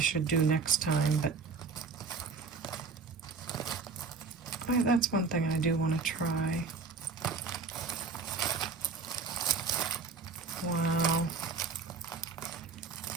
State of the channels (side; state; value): left; quieter; 4.5 dB